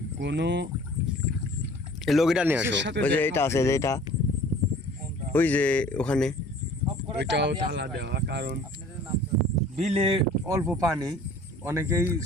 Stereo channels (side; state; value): both; normal; correlation 0.49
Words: কোনো এই লগিটা নিয়ে আসো, কিসের সাথে ওই যে দেখা এটা আছে, যে এটা ওই যে ওখানে। ওইটাও তালা দেওয়া, কারণ বিলে অল্প পানি, অনেকেই